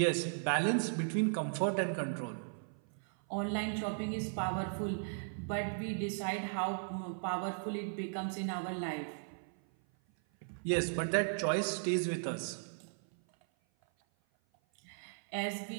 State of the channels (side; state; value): left; silent; 53 dB below the other